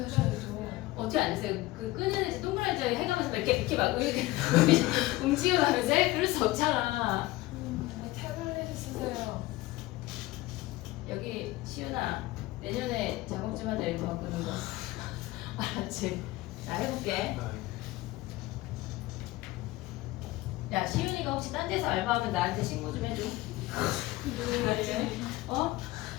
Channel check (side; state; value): right; quieter; 18.6 dB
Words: 하셔야죠. 어떻게 앉으세요? 그 끄는 동그랗게 해가면서 이렇게 막 이렇게 움직여가면서 해? 그럴 수 없잖아. 태블릿 쓰세요. 여기 시윤아 내년에 작업 좀 하자 이거 바꾸는 거. 알았지? 나 해볼게. 야 시윤이가 혹시 딴 데서 알바하면 나한테 신고 좀 해줘. 어?